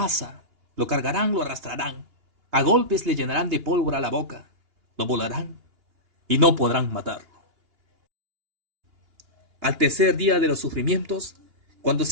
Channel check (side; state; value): left; late; 2.8 ms